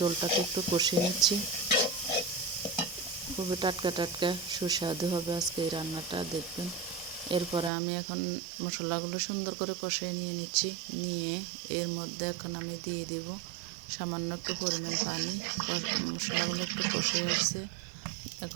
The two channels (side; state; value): left; drops out; at 7.7 s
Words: একটু কষিয়ে নিচ্ছি। খুবই টাটকা টাটকা সুস্বাদু হবে আজকে এই রান্নাটা, দেখবেন। এরপরে আমি এখন মশলাগুলো সুন্দর করে কষিয়ে নিয়ে নিচ্ছি। নিয়ে এর মধ্যে এখন আমি দিয়ে দিব সামান্য একটু পরিমাণ পানি। মশলাগুলো একটু কষে এসেছে,